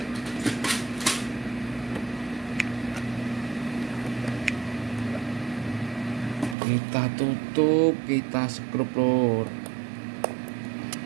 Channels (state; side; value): drops out; left; at 6.6 s